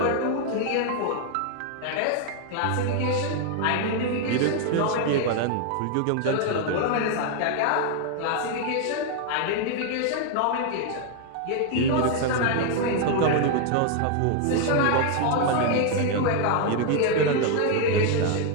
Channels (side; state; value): both; different; correlation 0.00